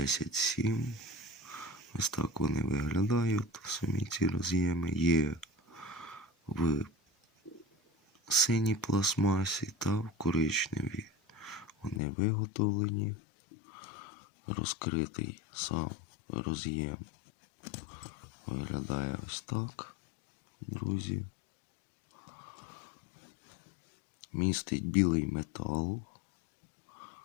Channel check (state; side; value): drops out; right; at 12.0 s